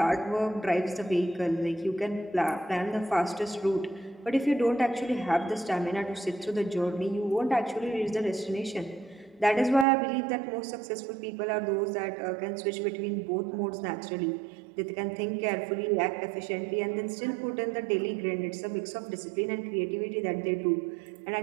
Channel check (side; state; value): left; drops out; at 9.9 s